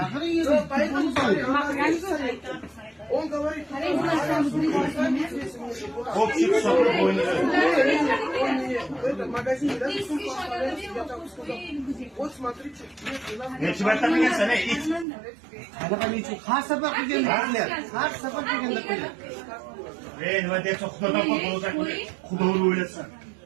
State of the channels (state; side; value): drops out; left; at 15.1 s